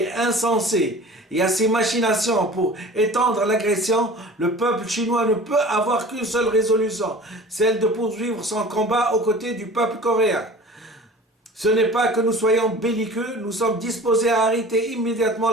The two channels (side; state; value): both; normal; correlation 0.42